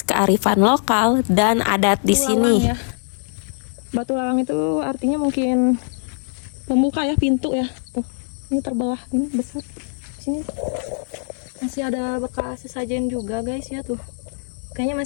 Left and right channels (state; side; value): silent; right; 64 dB below the other